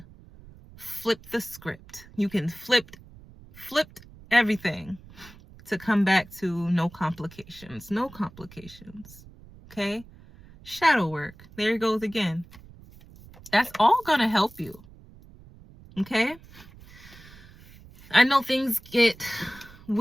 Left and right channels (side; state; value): right; noise; rumble, 21 dB below the sound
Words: flip the script. You can flip everything to come back to no complications. No complications. Okay? Shadow work. There it goes again. That's all gonna help you. Okay? I know things get